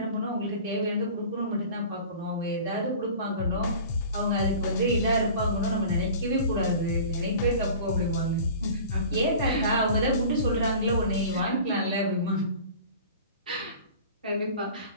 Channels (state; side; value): inverted; both; correlation -0.41